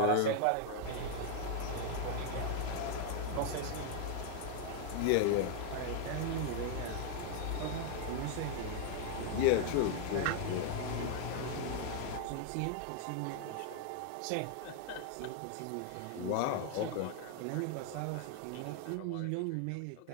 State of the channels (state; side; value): different; both; correlation 0.00